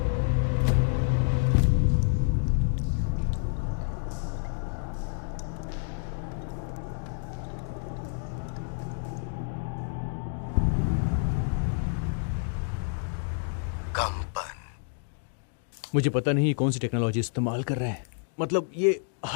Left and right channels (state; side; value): silent; right; digital silence